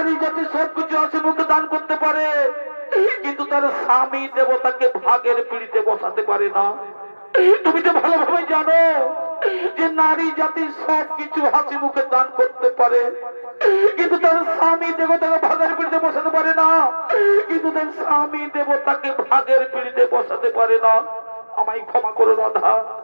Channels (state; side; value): inverted; both; correlation -1.00